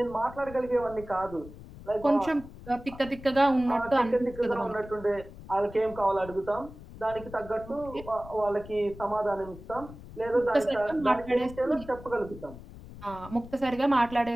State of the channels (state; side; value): noise; left; rumble, 16 dB below the sound